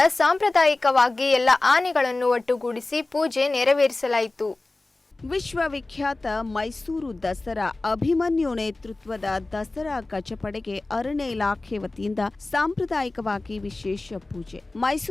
ಸಾಂಪ್ರದಾಯಿಕವಾಗಿ ಎಲ್ಲ ಆನೆಗಳನ್ನು ಒಟ್ಟುಗೂಡಿಸಿ ಪೂಜೆ ನೆರವೇರಿಸಲಾಯಿತು. ವಿಶ್ವವಿಖ್ಯಾತ ಮೈಸೂರು ದಸರಾ ಅಭಿಮನ್ಯು ನೇತೃತ್ವದ ದಸರಾ ಗಜಪಡೆಗೆ ಅರಣ್ಯ ಇಲಾಖೆ ವತಿಯಿಂದ ಸಾಂಪ್ರದಾಯಿಕವಾಗಿ ವಿಶೇಷ ಪೂಜೆ.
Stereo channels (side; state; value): right; quieter; 3.1 dB